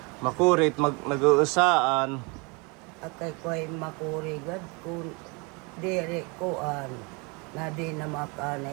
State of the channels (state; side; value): quieter; left; 30.1 dB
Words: Makurit, nag-uusaan. At kay ko'y makurigad kung dire koan na di na